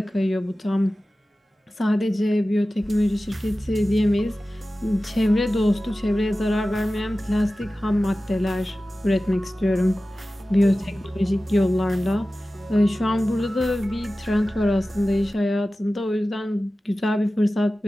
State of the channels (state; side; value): normal; both; correlation 0.95